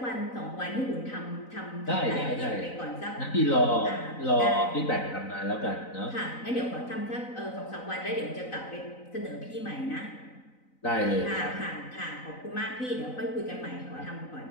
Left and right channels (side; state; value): right; late; 4.0 ms